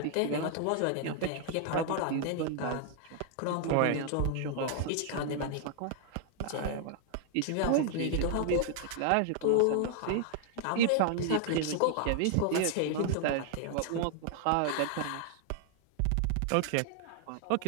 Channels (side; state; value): both; different; correlation 0.00